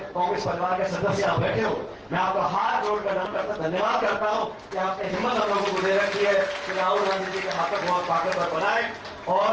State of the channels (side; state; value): both; identical; correlation 1.00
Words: कांग्रेस परिवार के सदस्य आप बैठे हो, मैं आपका हाथ जोड़कर धन्यवाद करता हूं कि आपने हिम्मत हम लोगों को दे रखी है कि राहुल गांधी जी के हाथों बहुत ताकतवर बनाए। और